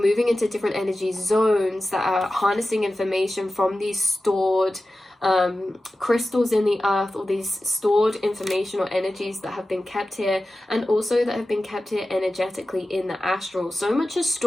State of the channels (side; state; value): both; normal; correlation 0.94